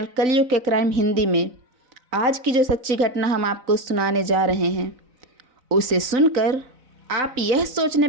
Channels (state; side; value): late; left; 4.0 ms